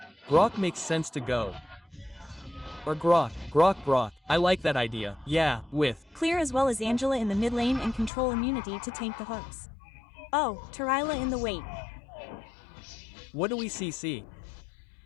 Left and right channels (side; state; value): right; drops out; at 8.1 s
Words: Grok makes sense to go. Or Grok. I like that idea. Yeah, with Clear as well as Angela in the mid lane and control immunity to tank the hooks. Oh, Tarila in the wait. What do we CC?